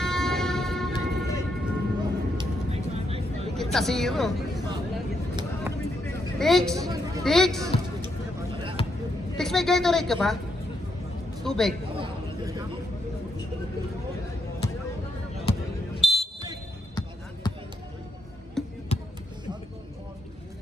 Dikit sa 0. Tix, may Gatorade ka ba? Tubig.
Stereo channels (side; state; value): both; normal; correlation 0.79